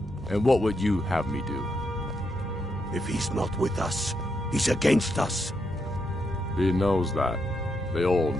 And what would you have me do? If he's not with us, he's against us. He knows that. They all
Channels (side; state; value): both; normal; correlation 0.81